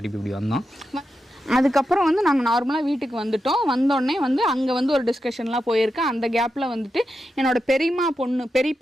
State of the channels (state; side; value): normal; both; correlation 0.88